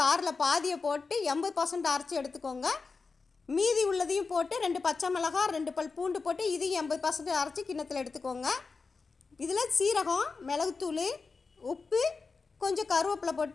பாதியை போட்டு 80% அரைச்சி எடுத்துக்கோங்க. மீதி உள்ளதையும் போட்டு 2 பச்சை மிளகாய் 2 பல் பூண்டு போட்டு இதையும் 80% அரைச்சி கிண்ணத்தில் எடுத்துக்கோங்க. இதில் சீரகம், மிளகுத்தூள், உப்பு, கொஞ்சம் கருவேப்பிலை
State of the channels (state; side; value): quieter; right; 4.5 dB